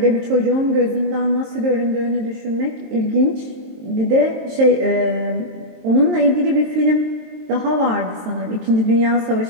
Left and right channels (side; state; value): left; late; 23 ms